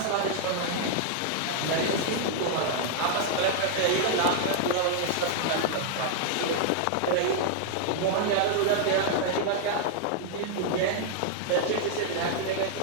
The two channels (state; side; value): different; both; correlation -0.01